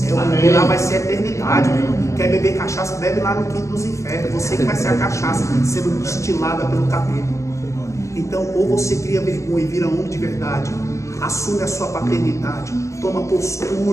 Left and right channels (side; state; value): right; late; 0.15 ms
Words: porque lá vai ser a eternidade, meu irmão. Quer beber cachaça, bebe lá no quinto dos infernos. Você que vai ser a cachaça sendo destilada pelo capeta. Então, ou você cria vergonha e vira homem de verdade, assume a sua paternidade, toma